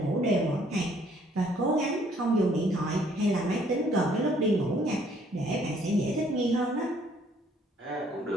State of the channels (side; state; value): both; normal; correlation 0.63